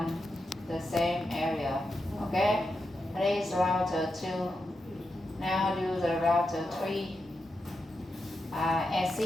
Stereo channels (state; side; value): normal; both; correlation 0.87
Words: the same area. Okay, this is router 2. Now do the router 3.